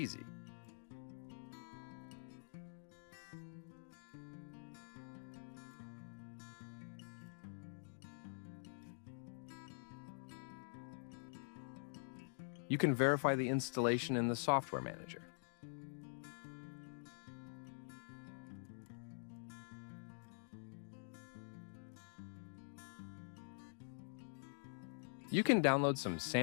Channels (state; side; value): silent; right; digital silence